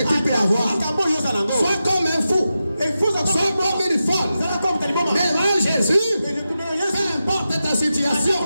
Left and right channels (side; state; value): both; inverted; correlation -0.91